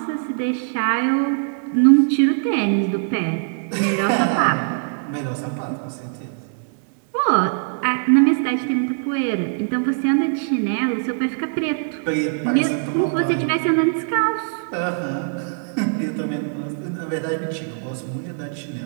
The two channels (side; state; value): left; silent; digital silence